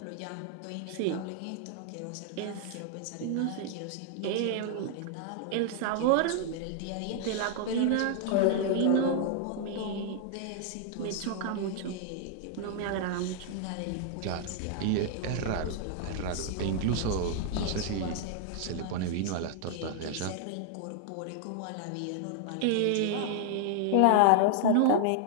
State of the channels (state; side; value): different; both; correlation 0.00